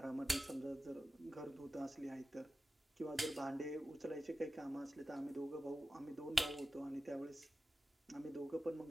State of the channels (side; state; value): both; normal; correlation 0.93